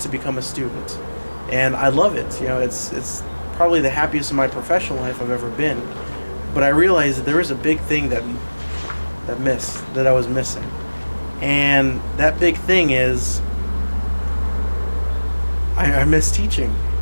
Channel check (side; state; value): both; inverted; correlation -1.00